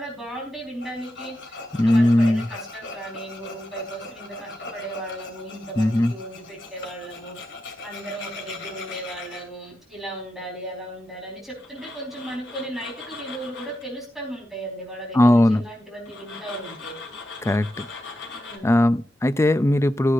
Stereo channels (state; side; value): normal; both; correlation 0.88